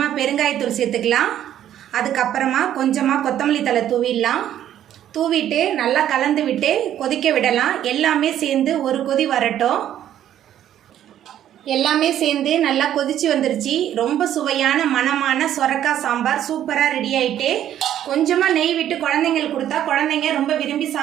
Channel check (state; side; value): quieter; left; 11.2 dB